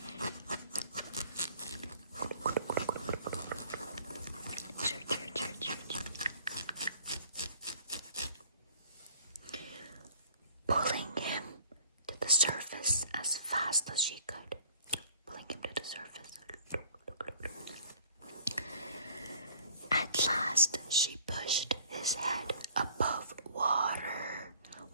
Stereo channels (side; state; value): both; inverted; correlation -0.54